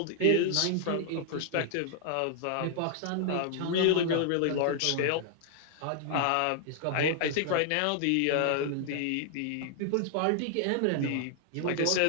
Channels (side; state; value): both; different; correlation 0.00